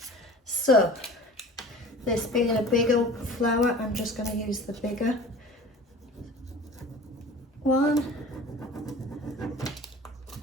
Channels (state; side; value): normal; both; correlation 0.41